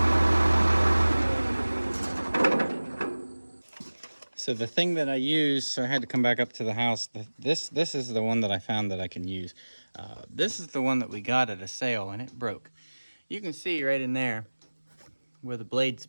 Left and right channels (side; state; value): both; inverted; correlation -1.00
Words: So the thing that I use, so I had to come back up to the house. This is the one that I found that I can use. This is the one that we got at a sale, and it broke. You can see right in there where the blade